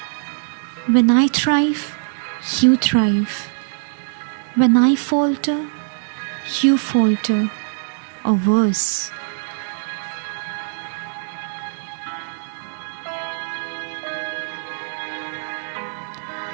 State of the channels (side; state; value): left; silent; digital silence